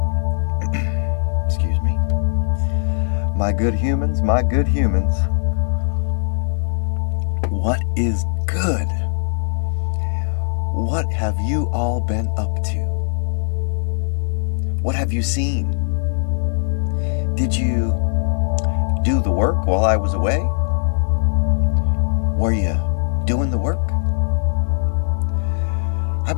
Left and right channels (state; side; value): silent; right; digital silence